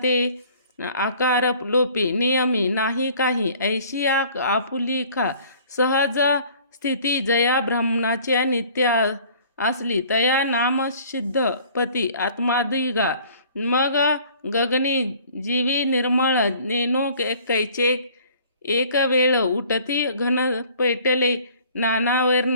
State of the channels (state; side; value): inverted; both; correlation -0.52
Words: आकार लोपे, नियमी नाही काही. ऐशी आपुली खा सहज स्थिती, जया ब्रह्मणाच्या नित्य असली, तया नाम सिद्ध पती आत्मादिगा. मग गगनी जीवी निर्मळ नेनो कैचे, एक वेळ उठती घन पैटले